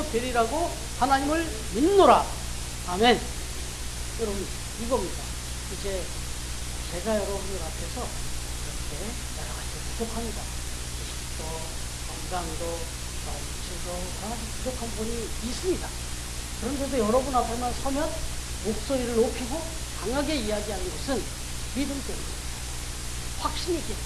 되리라고 하나님을 믿노라. 아멘. 여러분 이겁니다. 이제 제가 여러분들 앞에서 이렇게 여러 가지 부족합니다. 지식도 건강도 물질도 여러 가지 부족한 부분이 있습니다. 그런데도 여러분 앞에만 서면 목소리를 높이고 강하게 이야기하는 것은 믿음 때문입니다. 확신이 있기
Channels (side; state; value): both; identical; correlation 1.00